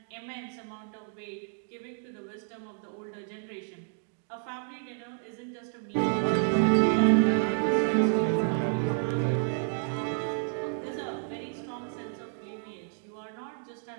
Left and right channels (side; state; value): left; silent; 58 dB below the other